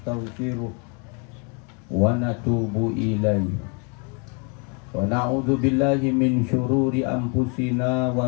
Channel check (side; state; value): right; quieter; 35.7 dB